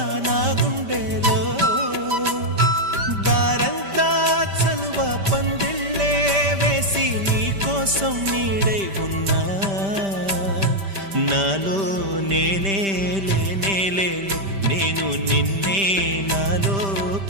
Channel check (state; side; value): late; left; 5.1 ms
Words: నా గుండెలో దారంతా చలువ పందిళ్ళే వేసి నీ కోసం నీడై ఉన్నా నాలో నేనే లేనే లేను నేను నిన్నే నాలో